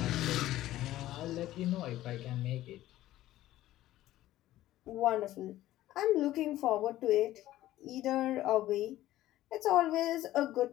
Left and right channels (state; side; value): quieter; right; 14.8 dB